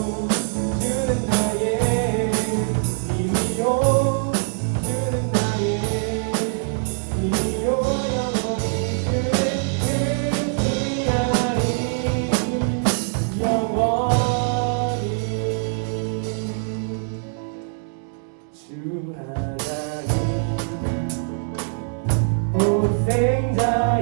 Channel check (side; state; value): left; silent; 63 dB below the other